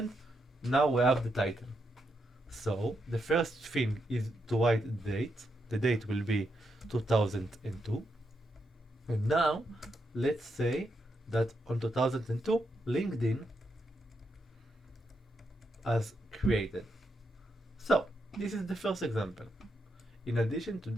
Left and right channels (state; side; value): normal; both; correlation 0.82